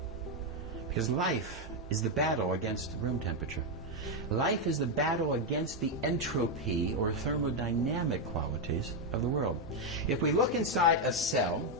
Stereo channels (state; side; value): normal; both; correlation 0.03